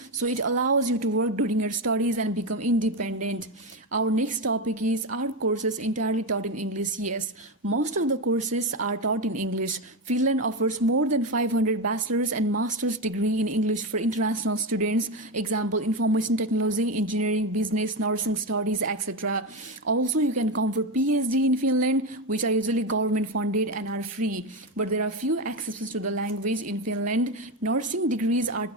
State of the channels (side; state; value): both; normal; correlation 0.13